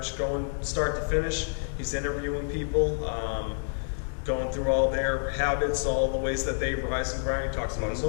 going start to finish. He's interviewing people, going through all their habits, all the ways that they rise and grind. He talks about his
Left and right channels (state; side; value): silent; right; 59 dB below the other